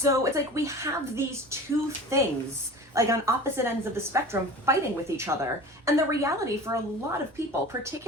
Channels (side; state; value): both; normal; correlation 0.37